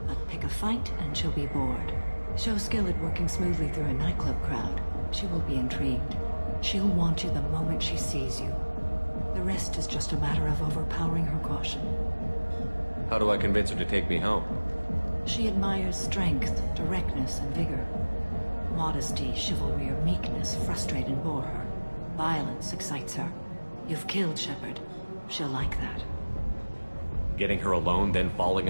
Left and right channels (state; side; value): inverted; both; correlation -1.00